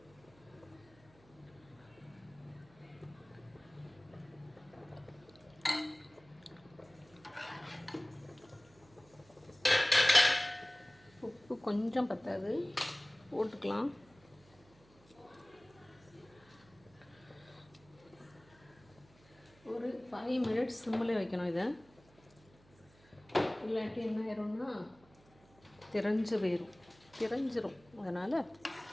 உப்பு கொஞ்சம் பத்தாது, போட்டுக்கலாம். ஒரு 5 மினிட்ஸ் சிம்மில் வைக்கணும். இதை இல்லாட்டி என்ன ஆயிரும்னா திரஞ்சிரும். அதனால்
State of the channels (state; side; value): noise; right; hum, 27 dB below the sound